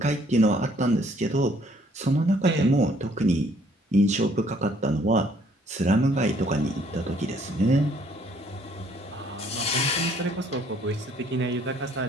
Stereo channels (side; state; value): both; normal; correlation 0.63